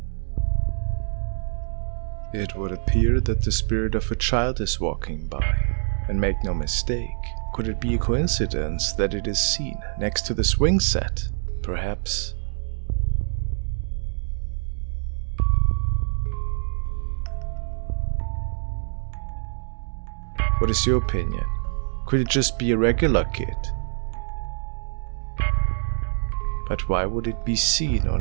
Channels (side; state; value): left; silent; digital silence